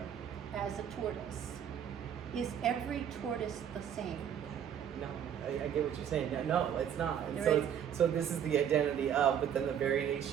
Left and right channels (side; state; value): left; quieter; 9.0 dB